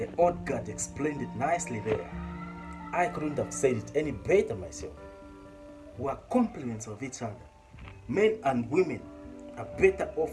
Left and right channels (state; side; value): identical; both; correlation 1.00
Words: old God explained it nicely there. I couldn't have said it any better myself. We are complements of each other. Men and women are better